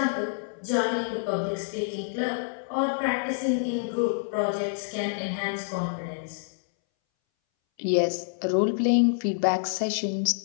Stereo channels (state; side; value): silent; right; 60 dB below the other